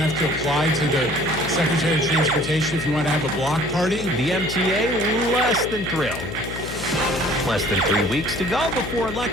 to apply to the Secretary of Transportation if you want to have a block party. The MTA less than thrilled. Less than 3 weeks to go before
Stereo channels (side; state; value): left; noise; hum, 9 dB below the sound